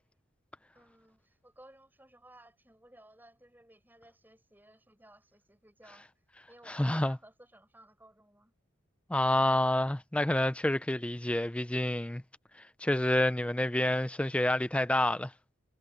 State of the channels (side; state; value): both; normal; correlation 0.91